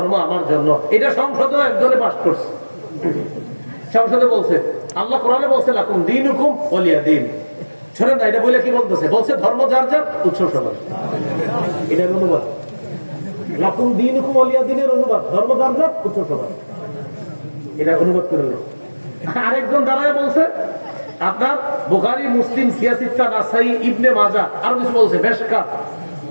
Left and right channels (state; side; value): inverted; both; correlation -1.00